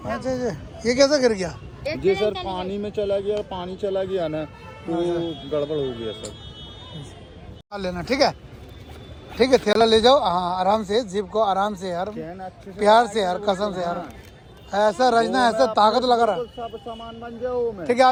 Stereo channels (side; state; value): both; identical; correlation 1.00